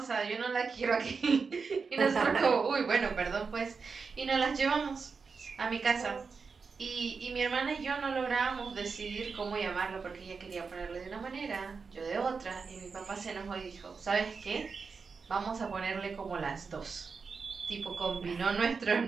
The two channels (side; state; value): left; quieter; 5.1 dB